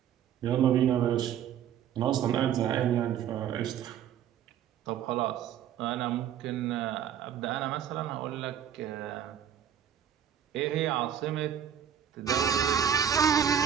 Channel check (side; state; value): left; quieter; 9.2 dB